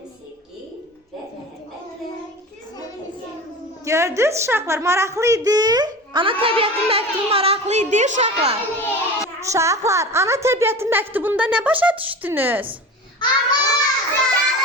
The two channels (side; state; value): both; normal; correlation 0.33